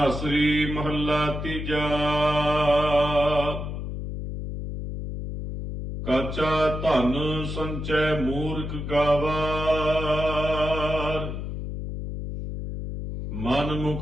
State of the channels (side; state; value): left; noise; hum, 6 dB below the sound